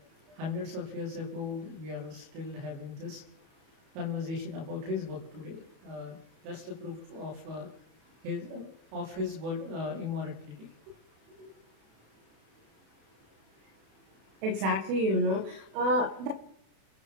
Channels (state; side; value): late; left; 36 ms